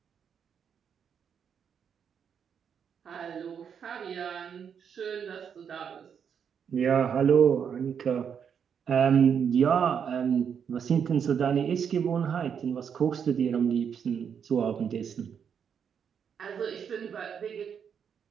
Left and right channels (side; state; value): left; quieter; 7.5 dB